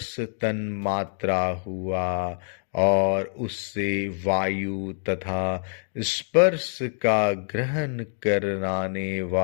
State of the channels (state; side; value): silent; right; digital silence